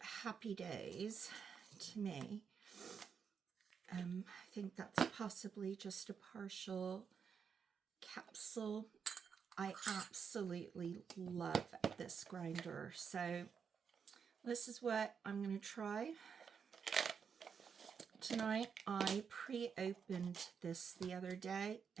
days to me. I think that's possibly just a partial capsule. I absolutely love this grinder. So this is what I'm going to try tonight. I pre-opened this the other day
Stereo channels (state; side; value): quieter; left; 6.6 dB